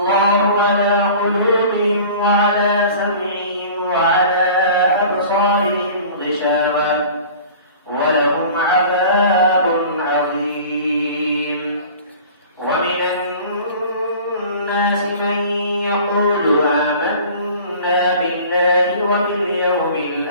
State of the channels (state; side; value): inverted; both; correlation -0.43